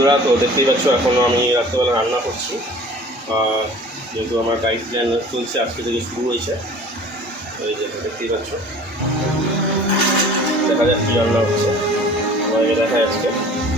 তো দেখতেই পাচ্ছ এখন আমি রাত্রেবেলা রান্না করছি। যেহেতু আমার ডায়েট প্ল্যান চলছে, আজকে থেকে শুরু হয়েছে। এই যে দেখতেই পাচ্ছ, দেখা যাক কী রান্না হচ্ছে, তোমাদেরকে দেখায় আজকে।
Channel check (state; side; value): normal; both; correlation 0.46